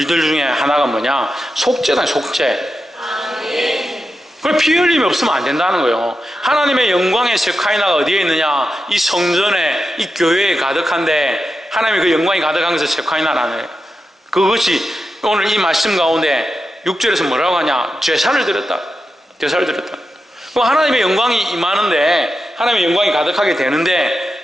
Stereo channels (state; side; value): normal; both; correlation 0.89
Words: 중에 하나가 뭐냐? 속죄다. 속죄. 그럼 피 흘림이 없으면 안 된다는 거예요. 하나님의 영광의 세카이나가 어디에 있느냐? 이 성전에, 이 교회에 가득한데, 하나님의 그 영광이 가득한 것을 세카이나라는 거예요. 그것이 오늘 이 말씀 가운데 6절에서 뭐라고 하냐? 제사를 드렸다. 제사를 드렸다. 그럼 하나님의 영광이 임하는데, 하나님의 영광이 가득하게